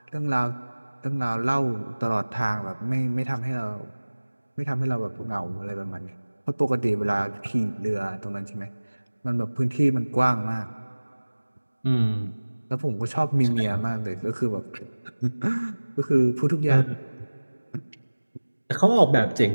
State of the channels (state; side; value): inverted; both; correlation -1.00